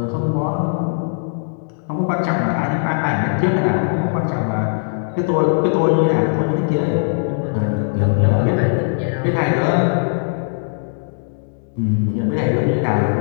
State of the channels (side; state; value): right; silent; digital silence